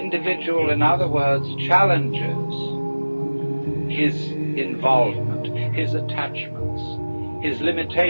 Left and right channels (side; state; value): both; inverted; correlation -1.00